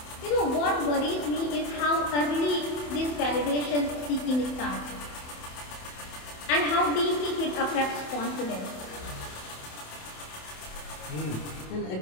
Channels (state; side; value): late; right; 27 ms